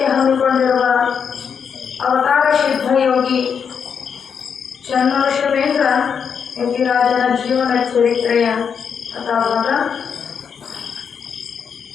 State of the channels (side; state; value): right; quieter; 6.9 dB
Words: ಹಮ್ಮಿಕೊಂಡಿರುವ ಅವತಾರ ಸಿದ್ಧಯೋಗಿ ಚನ್ನಶಿವೇಂದ್ರ ಯತಿರಾಜನ ಜೀವನ ಚರಿತ್ರೆಯ ಕಥಾಭಾಗ.